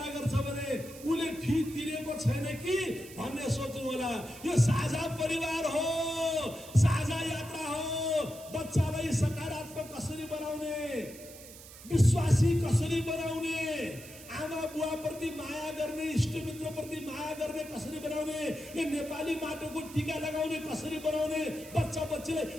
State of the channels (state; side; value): noise; right; hiss, 17 dB below the sound